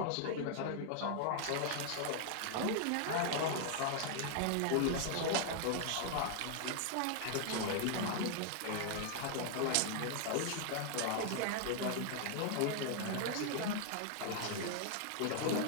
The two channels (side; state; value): both; different; correlation 0.00